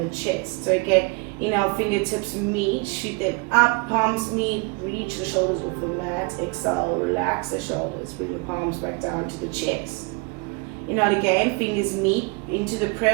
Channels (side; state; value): left; quieter; 29.8 dB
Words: chest. So again, inhale, fingertips meet, shoot them up, palms meet, reach the shoulders off the mat, exhale, relax the shoulders, bring the palms back down to the chest. Inhale again, fingers meet into the